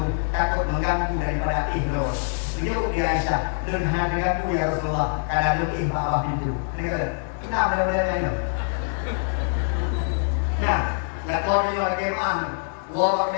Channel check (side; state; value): right; silent; 62 dB below the other